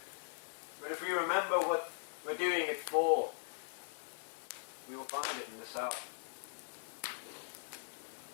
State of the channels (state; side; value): silent; right; 51 dB below the other